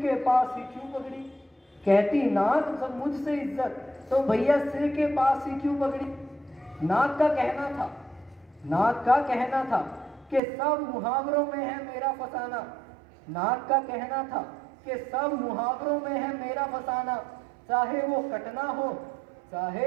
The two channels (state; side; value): drops out; left; at 10.4 s